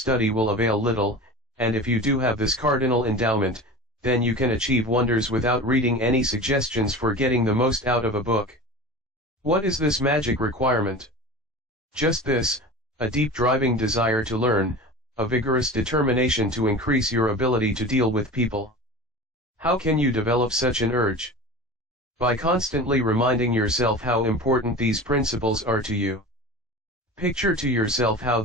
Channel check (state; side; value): normal; both; correlation 0.34